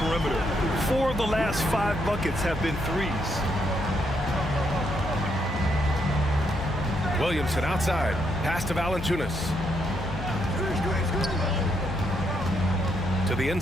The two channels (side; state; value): left; noise; hum, 7 dB below the sound